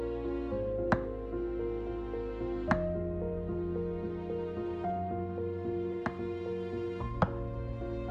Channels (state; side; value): identical; both; correlation 1.00